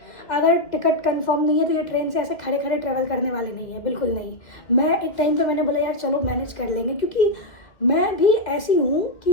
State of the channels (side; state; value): right; late; 2.3 ms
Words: अगर टिकट कंफर्म नहीं है तो ये ट्रेन से ऐसे खड़े खड़े ट्रैवल करने वाले नहीं है, बिल्कुल नहीं। मैं एक टाइम पे मैंने बोला यार चलो मैनेज कर लेंगे, क्योंकि मैं भी ऐसी हूँ